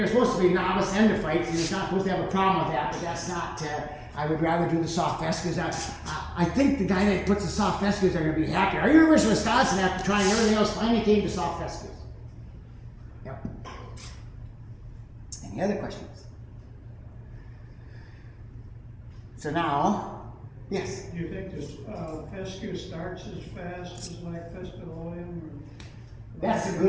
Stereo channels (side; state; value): both; identical; correlation 1.00